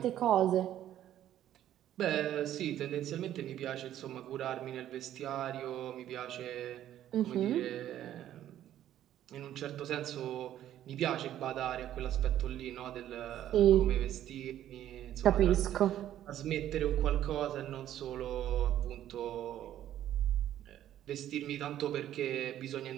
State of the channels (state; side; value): quieter; left; 11.9 dB